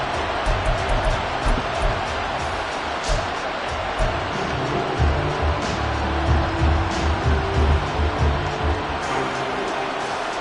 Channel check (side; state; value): both; identical; correlation 1.00